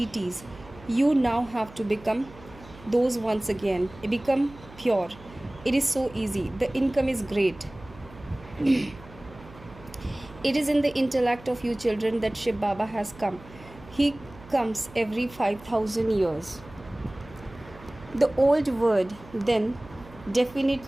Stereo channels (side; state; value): right; noise; hum, 20 dB below the sound